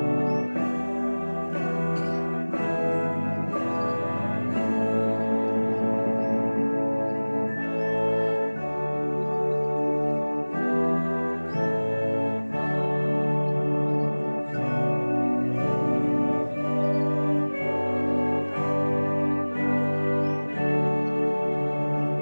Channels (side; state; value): both; inverted; correlation -1.00